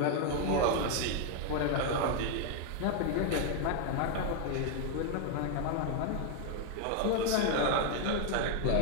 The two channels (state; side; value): different; both; correlation 0.00